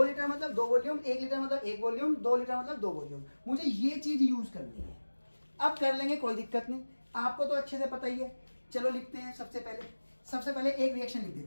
लीटर मतलब 2 वॉल्यूम, 1 लीटर मतलब 1 वॉल्यूम, 2 लीटर मतलब 2 वॉल्यूम। मुझे ये चीज यूज करनी है। अब कर लेंगे, कोई दिक्कत नहीं, आपको तो अच्छे से पता ही है। चलो लिखते हैं, सबसे पहले एक रिएक्शन लिख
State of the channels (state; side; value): inverted; both; correlation -1.00